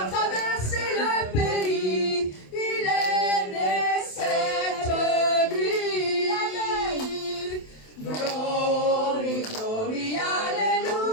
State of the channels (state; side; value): late; right; 27 ms